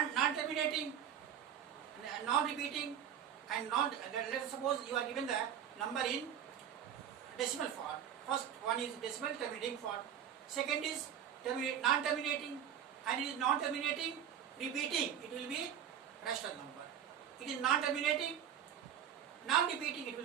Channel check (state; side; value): quieter; left; 9.2 dB